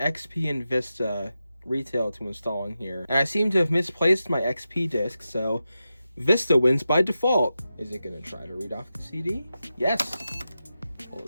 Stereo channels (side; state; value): both; inverted; correlation -0.91